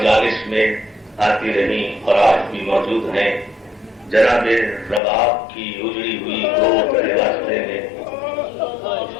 میں آتی رہی اور آج بھی موجود ہیں. جناب رباب کی اجڑی ہوئی گود کے واسطے میں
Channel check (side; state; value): right; drops out; at 5.0 s